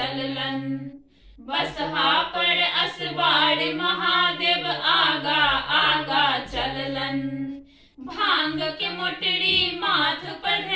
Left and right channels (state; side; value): identical; both; correlation 1.00